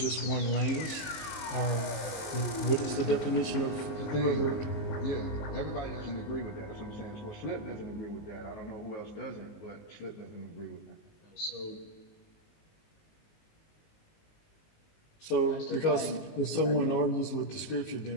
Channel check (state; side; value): late; right; 19 ms